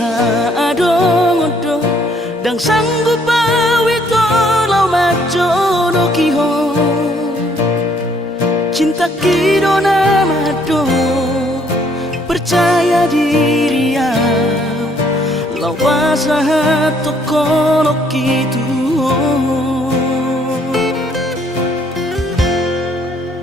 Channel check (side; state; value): both; normal; correlation 0.65